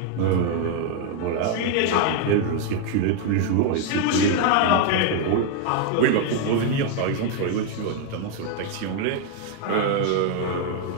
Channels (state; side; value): different; both; correlation 0.01